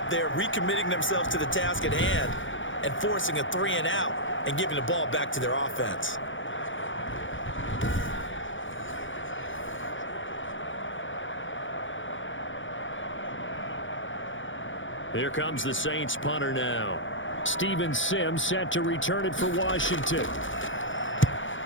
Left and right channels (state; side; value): late; right; 0.56 ms